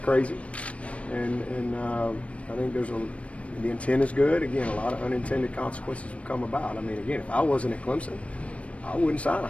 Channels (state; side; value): late; right; 0.063 ms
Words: crazy, and I think the intent is good. Again, a lot of unintended consequences will come about. I mean, again, if I wasn't at Clemson, I wouldn't sign a